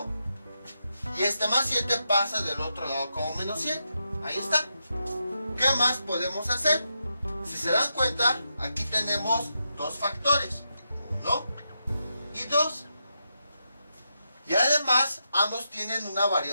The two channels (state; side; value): inverted; both; correlation -0.85